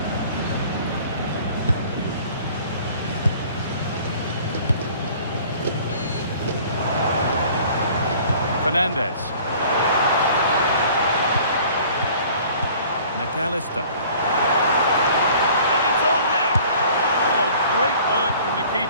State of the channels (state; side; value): inverted; both; correlation -0.50